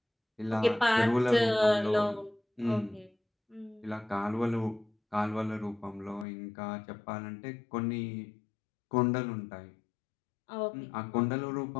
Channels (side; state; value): right; drops out; at 6.2 s